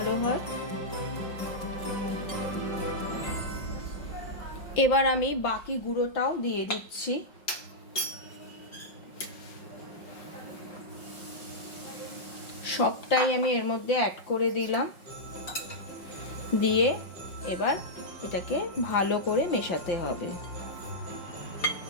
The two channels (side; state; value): right; late; 5.4 ms